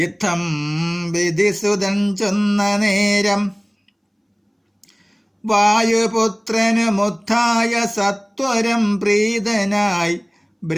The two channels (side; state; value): both; identical; correlation 1.00